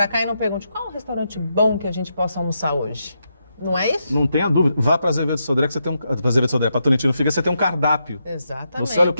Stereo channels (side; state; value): both; inverted; correlation -0.83